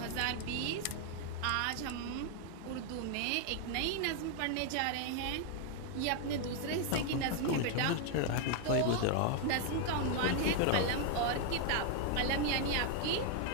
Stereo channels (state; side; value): different; both; correlation 0.00